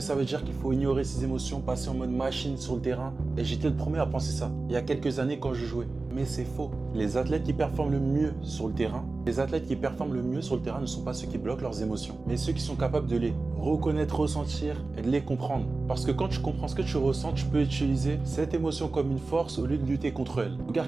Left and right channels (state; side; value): quieter; left; 3.5 dB